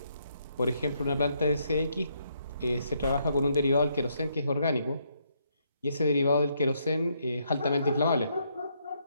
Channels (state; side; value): inverted; both; correlation -0.74